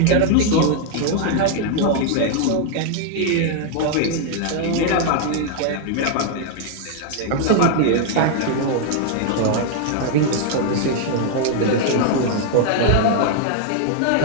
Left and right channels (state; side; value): different; both; correlation 0.00